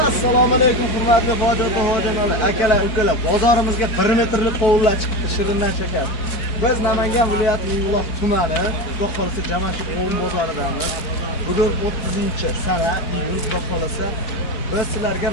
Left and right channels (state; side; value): late; right; 4.4 ms